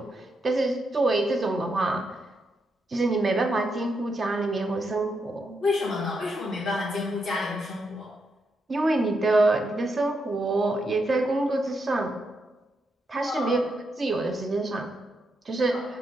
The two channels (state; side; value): normal; both; correlation 0.82